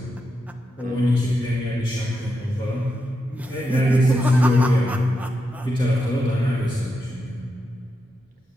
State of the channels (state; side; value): normal; both; correlation 0.86